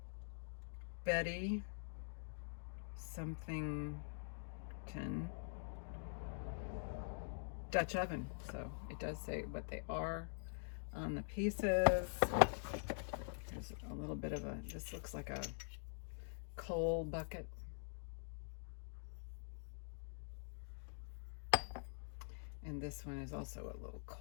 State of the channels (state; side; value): silent; right; digital silence